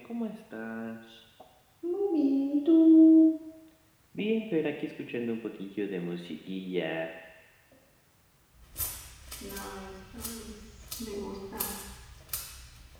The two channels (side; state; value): both; identical; correlation 1.00